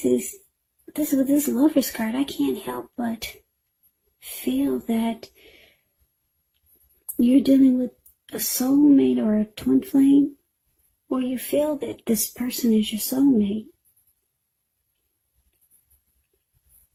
with this Lovers card, I can't help but feel that you're dealing with a soulmate or a twin flame, or you feel that this person is your soulmate.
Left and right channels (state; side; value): identical; both; correlation 1.00